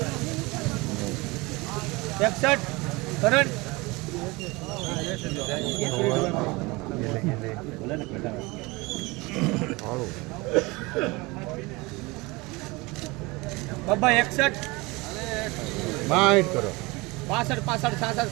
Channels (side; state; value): left; quieter; 24.0 dB